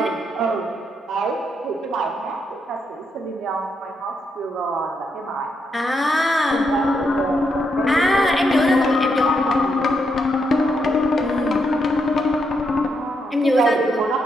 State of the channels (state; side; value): normal; both; correlation 0.79